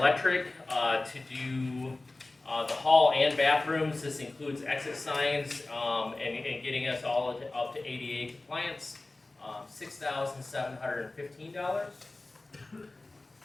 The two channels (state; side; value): quieter; right; 3.0 dB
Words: to do, the hall and bathrooms. This includes exit signs, and getting us all up to ADA compliance. $6,715.